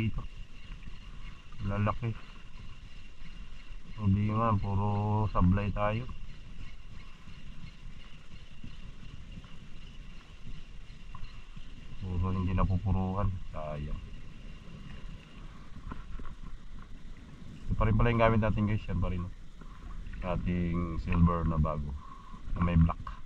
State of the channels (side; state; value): both; identical; correlation 1.00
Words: Lalaki. Hindi nga, puro sablay tayo. Puro hindi napupuruhan. Sayang. Ito pa rin pala yung gamit natin guys. Yan pa rin. Ating silver na bago. Na may black.